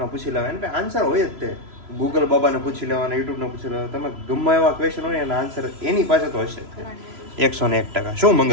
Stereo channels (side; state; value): left; late; 3.0 ms